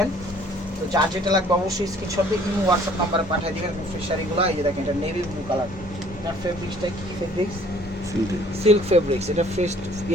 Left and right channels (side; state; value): both; normal; correlation 0.56